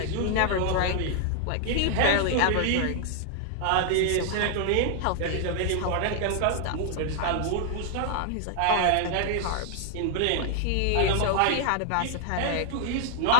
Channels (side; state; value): both; different; correlation 0.00